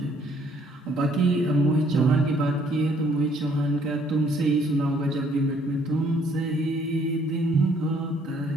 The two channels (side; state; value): both; normal; correlation 0.64